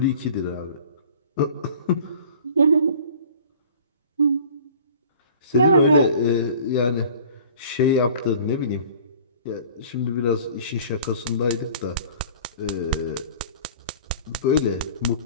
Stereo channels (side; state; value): both; inverted; correlation -0.47